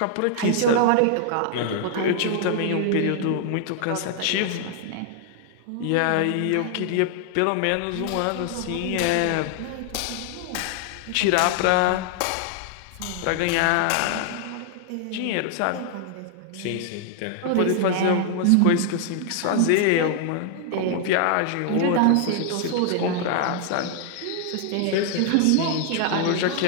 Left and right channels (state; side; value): different; both; correlation 0.00